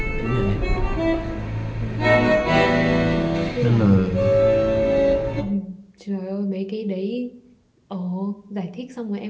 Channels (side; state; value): both; identical; correlation 1.00